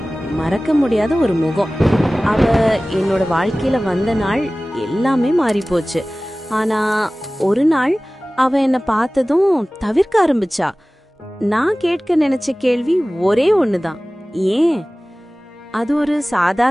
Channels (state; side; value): normal; both; correlation 0.98